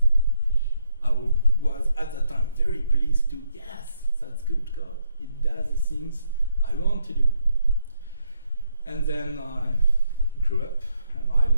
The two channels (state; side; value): inverted; both; correlation -0.75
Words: I was at that time very pleased to, yes, that's good code. It does the things I want to do. And then I grew up and I